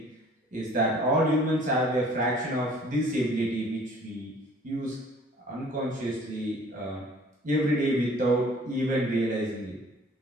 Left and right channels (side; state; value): both; normal; correlation 0.53